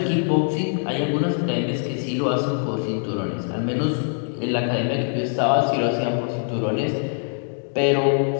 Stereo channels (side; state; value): right; silent; digital silence